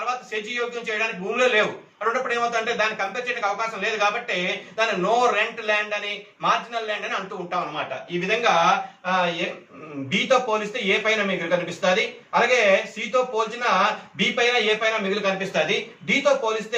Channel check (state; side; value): identical; both; correlation 1.00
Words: సెజ్యోగ్యం చేయడానికి భూములే లేవు. అన్నప్పుడు ఏమవుతుందంటే దాన్ని కంపేర్ చేయడానికి అవకాశం లేదు కాబట్టి దాన్ని నో రెంట్ ల్యాండ్ అని, మార్జినల్ ల్యాండ్ అని అంటూ ఉంటాం అనమాట. ఈ విధంగా బితో పోలిస్తే ఏ పైన మిగులు కనిపిస్తుంది, అలాగే సితో పోల్చిన బి పైన ఏ పైన మిగులు కనిపిస్తుంది, డితో